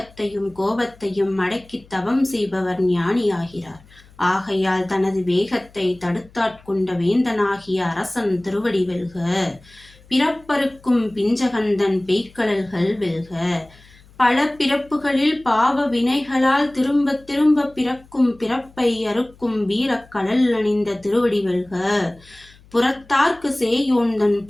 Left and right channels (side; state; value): left; noise; hum, 26 dB below the sound